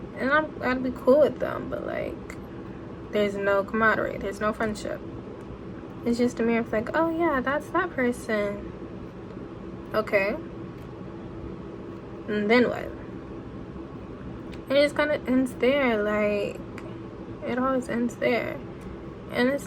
and I'd be cool with them, but like, there's no camaraderie, there's no friendship. It's just a mere of like, oh yeah, that's that person. Okay. And then what? And it just kind of ends there. Like, it always ends there. And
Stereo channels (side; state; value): both; identical; correlation 1.00